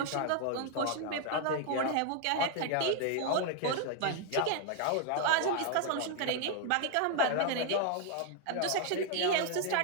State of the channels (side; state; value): both; different; correlation 0.00